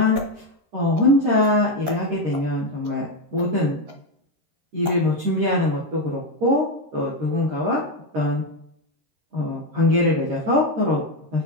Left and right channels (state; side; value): late; left; 13 ms